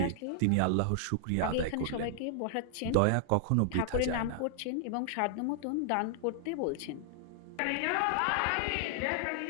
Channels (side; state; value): both; different; correlation -0.01